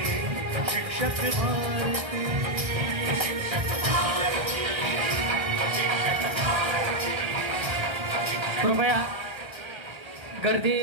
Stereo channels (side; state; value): left; late; 1.7 ms